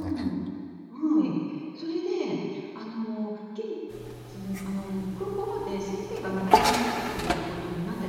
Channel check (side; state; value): both; identical; correlation 1.00